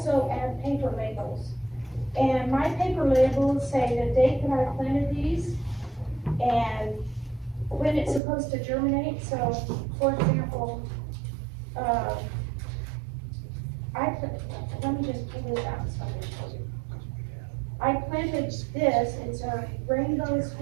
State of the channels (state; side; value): drops out; left; at 8.2 s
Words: add paper labels. And my paper labels say the date that I planted these, and when it's supposed to germinate. So, for example, let me just pull this out so I can show you. I planted this, it's a rainbow